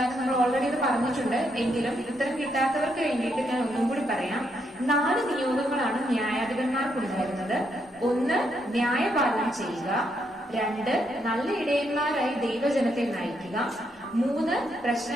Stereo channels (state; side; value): normal; both; correlation 0.77